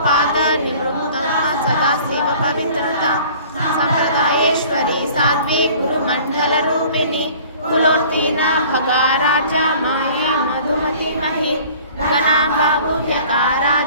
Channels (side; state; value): both; inverted; correlation -0.49